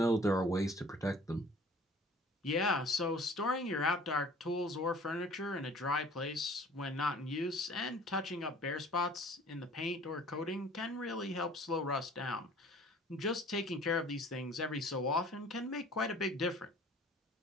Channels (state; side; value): normal; both; correlation 0.50